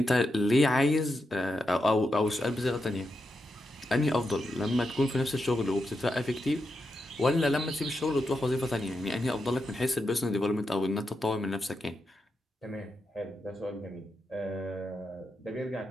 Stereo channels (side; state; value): both; normal; correlation 0.86